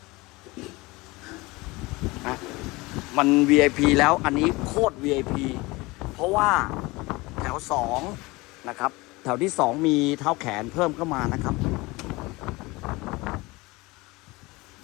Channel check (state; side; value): quieter; right; 22.7 dB